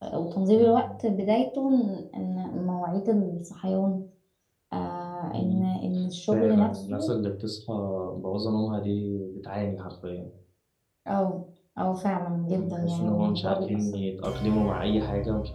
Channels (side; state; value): both; identical; correlation 1.00